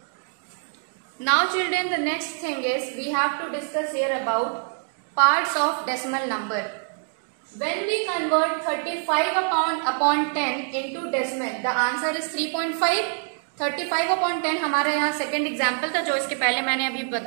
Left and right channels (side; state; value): left; silent; 55 dB below the other